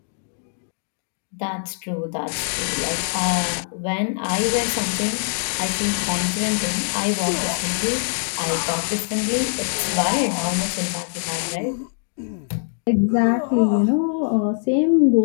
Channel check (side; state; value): right; silent; digital silence